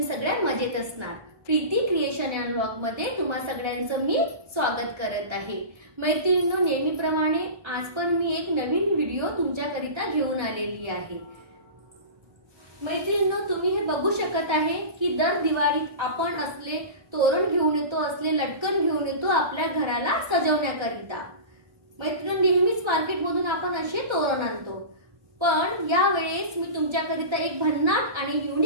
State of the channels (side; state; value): left; late; 1.3 ms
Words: सगळ्या मजेत असणार। प्रीती क्रिएशन अँड व्लॉग मध्ये तुम्हा सगळ्यांचं मी स्वागत करत आहे। मैत्रिणींनो, नेहमीप्रमाणे आज पण मी एक नवीन व्हिडिओ तुमच्याकरिता घेऊन आलेली आहे। मैत्रिणींनो, तुम्ही हे बघू शकत आहे की दर दिवाळीत आपण असले तोरण घेऊन येतो, असले लटकन घेऊन येतो आपल्या घराला सजवण्याकरिता। मैत्रिणींनो, नेहमीच मार्केटमधून आपण असे तोरण आणतो, पण या वेळेस मी तुमच्याकरिता एक भन्नाट आणि